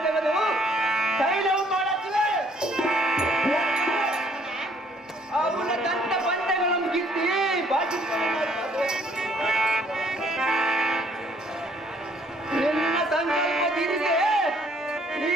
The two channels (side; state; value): both; normal; correlation 0.63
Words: ತೆಗೆದು ತೈಲವು ಮಾಡುತ್ತಿವೆ. ಅವನ ದಂತ ಬಂಡೆಗಳನ್ನು ಕಿತ್ತಿ ಬಾಕಿ ನಿನ್ನ ಸಂಕಲ್ಪದಿರಿಗೆ ಈ